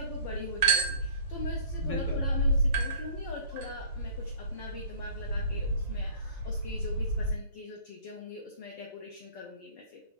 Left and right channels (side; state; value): both; inverted; correlation -0.48